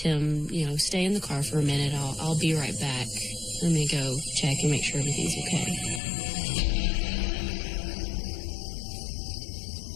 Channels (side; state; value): right; drops out; at 6.0 s